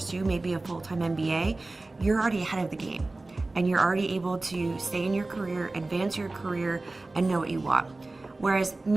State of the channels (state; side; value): quieter; left; 3.1 dB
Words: maybe a full-time MBA, you're already ahead of the game and you're already able to stay in your career, advance your career, and know what you want. Whereas